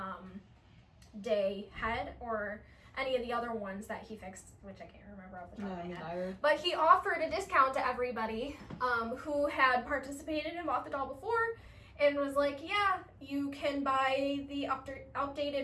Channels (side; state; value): both; identical; correlation 1.00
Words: day head or any of the other ones that he fixed, which I can't remember off the top of my head. But he offered a discount to everybody who had participated and bought the doll before, and was like, yeah, you can buy the